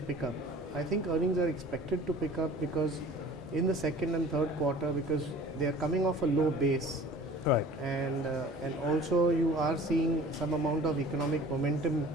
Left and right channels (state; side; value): normal; both; correlation 0.46